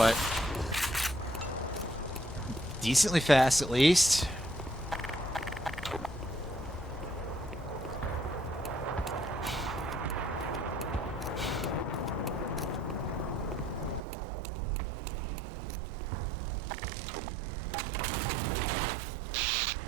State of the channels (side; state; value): left; drops out; at 14.0 s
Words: decently fast, at least.